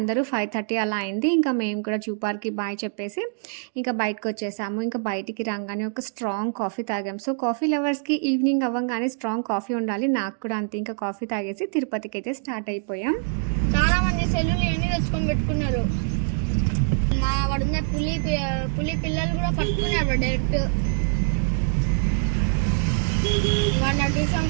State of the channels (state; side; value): silent; left; digital silence